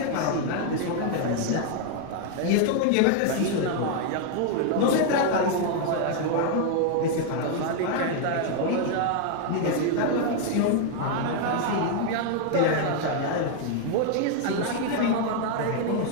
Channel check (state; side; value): different; both; correlation 0.00